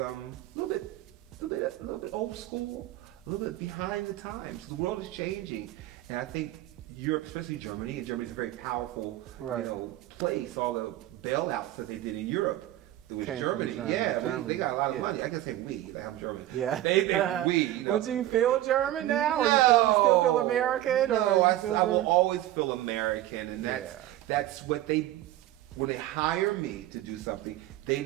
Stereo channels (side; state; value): left; quieter; 14.5 dB